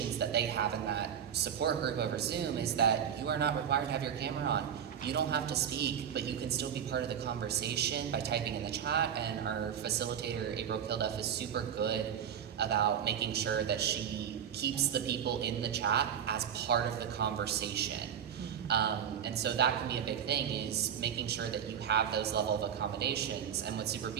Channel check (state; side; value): quieter; left; 8.6 dB